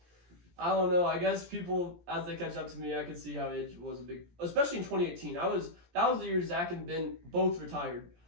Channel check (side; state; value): left; late; 17 ms